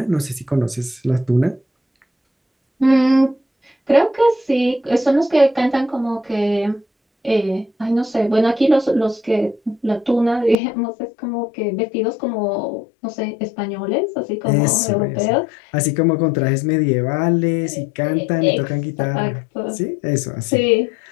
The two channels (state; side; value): drops out; right; at 10.6 s